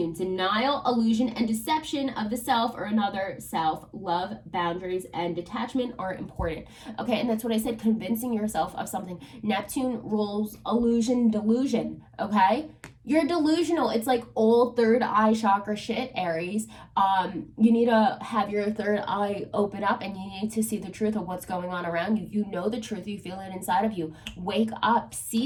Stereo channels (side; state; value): both; identical; correlation 1.00